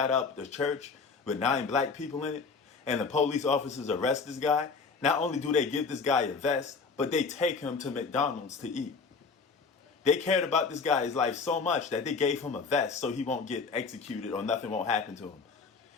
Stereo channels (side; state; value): right; quieter; 4.8 dB